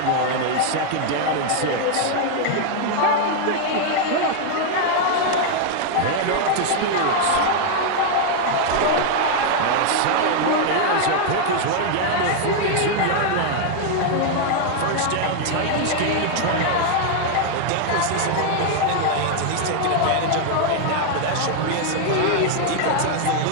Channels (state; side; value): different; both; correlation 0.00